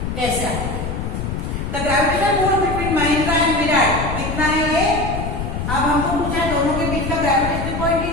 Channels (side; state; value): left; noise; rumble, 4 dB below the sound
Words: कैसा? The gravitational force between Mahendra and Virat कितना है ये, अब हमको पूछा है दोनों के बीच का ग्रेविटेशनल पॉइंट